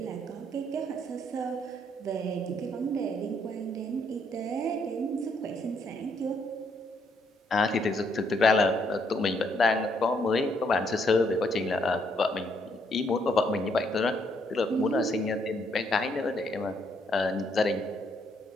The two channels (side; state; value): both; normal; correlation 0.72